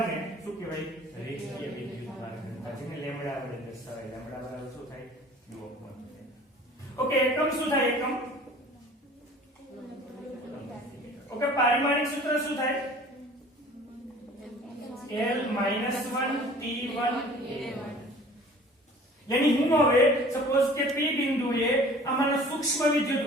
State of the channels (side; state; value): both; normal; correlation 0.47